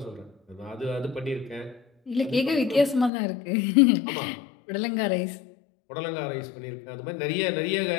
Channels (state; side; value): drops out; right; at 3.1 s